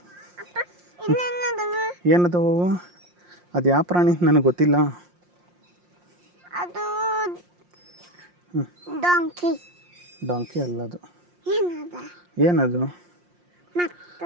ಇನ್ನೇನದವ ಏನದವು ಅದು ಯಾವ ಪ್ರಾಣಿ ನನಗೆ ಗೊತ್ತಿಲ್ಲ ಅದು ಡಾಂಕಿ ಡಾಂಕಿ ಅಲ್ಲ ಅದು ಏನದ ಏನದು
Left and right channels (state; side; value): late; left; 5.6 ms